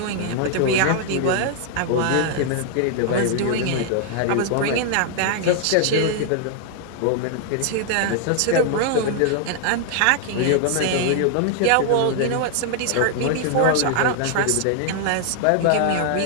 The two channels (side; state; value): both; different; correlation 0.00